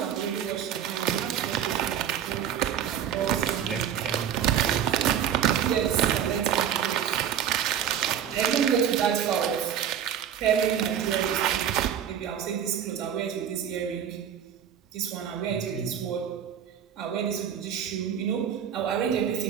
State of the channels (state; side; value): quieter; left; 9.2 dB